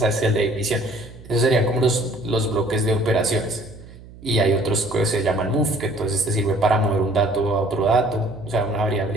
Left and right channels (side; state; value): right; noise; hum, 19 dB below the sound